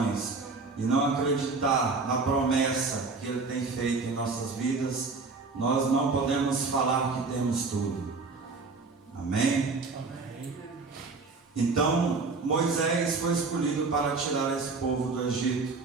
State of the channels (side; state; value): left; quieter; 4.1 dB